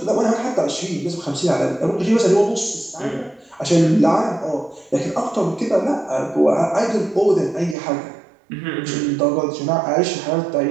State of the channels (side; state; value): left; drops out; at 7.8 s